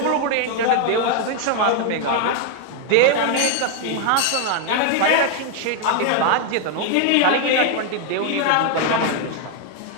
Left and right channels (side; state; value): both; different; correlation 0.00